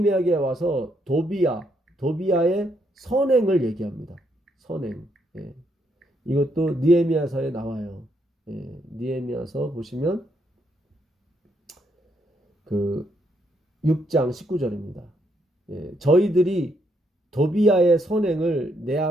와서 도비야의 선행을 얘기합니다. 선행. 이것도 느헤미야서에 나와요. 느헤미야서 보시면 그 6장 19절입니다. 저희들이 도비야의 선행을 내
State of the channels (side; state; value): both; normal; correlation 0.75